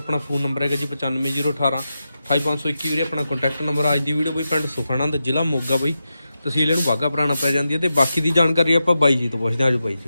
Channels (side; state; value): both; inverted; correlation -0.90